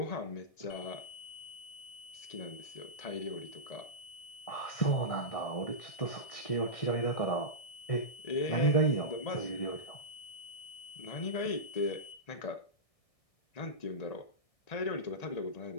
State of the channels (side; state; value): right; late; 1.6 ms